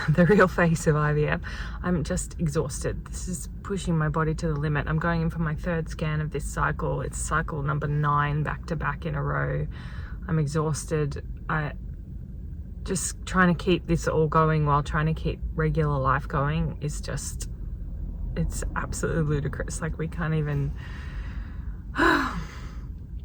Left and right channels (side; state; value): both; identical; correlation 1.00